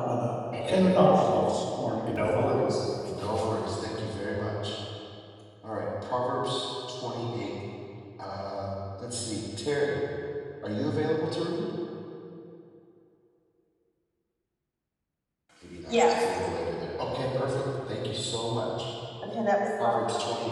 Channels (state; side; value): identical; both; correlation 1.00